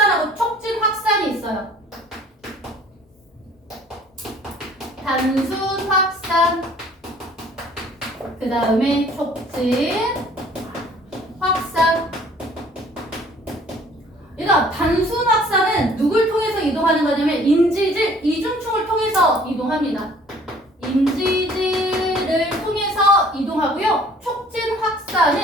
촉진 확산이 있어요. 단순 확산, 그 다음에 촉진 확산. 얘들아, 단순 확산은 누굴 통해서 이동하는 거냐면 인지질 이중층을 통해서 이동합니다. 인지질을 통해서 이동하고요. 촉진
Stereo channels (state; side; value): normal; both; correlation 0.54